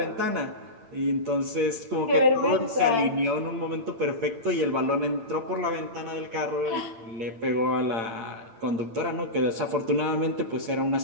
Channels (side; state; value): left; late; 8.8 ms